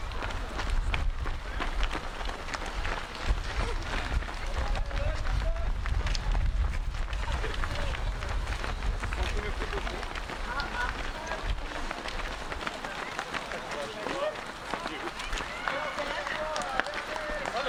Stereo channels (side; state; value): both; identical; correlation 1.00